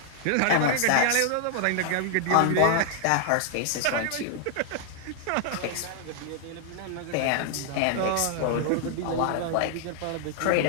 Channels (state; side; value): different; both; correlation 0.00